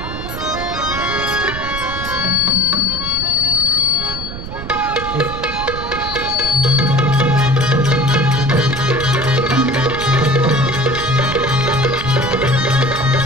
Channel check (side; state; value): right; noise; rumble, 9 dB below the sound